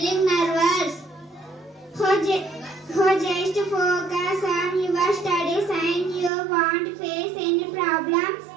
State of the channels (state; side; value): drops out; left; at 6.3 s